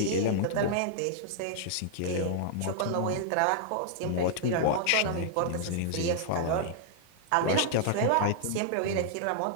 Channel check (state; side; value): different; both; correlation -0.01